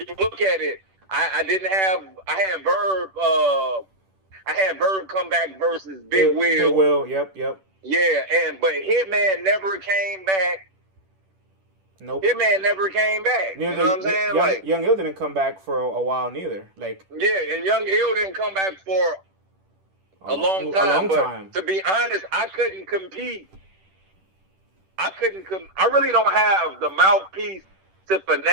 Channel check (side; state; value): left; late; 10 ms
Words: you look at it, I had Verb come back versus Big Will. Big Will, yep. Yeah, but Hitman never came back. Nope. Hitman never came back. You know what I'm saying? Young Ill didn't come back for a while neither. Like, yeah, and Young Ill didn't come back for a long time. But to be honest, I couldn't compete. I really don't have the mouthpiece to